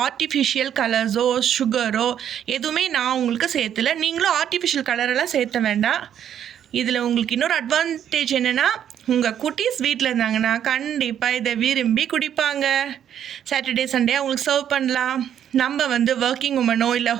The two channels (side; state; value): left; quieter; 9.7 dB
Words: ஆர்டிஃபிஷியல் கலர்ஸோ சுகரோ எதுவுமே நான் உங்களுக்கு சேர்த்துல. நீங்களும் ஆர்டிஃபிஷியல் கலரெல்லாம் சேர்த்த வேண்டாம். இதில் உங்களுக்கு இன்னொரு அட்வான்டேஜ் என்னென்னா, உங்கள் குட்டீஸ் வீட்டில் இருந்தாங்கன்னா கண்டிப்பாக இதை விரும்பி குடிப்பாங்க. சாட்டர்டே சண்டே அவங்களுக்கு சர்வ் பண்ணலாம். நம்ம ஒர்க்கிங் உமனோ இல்லை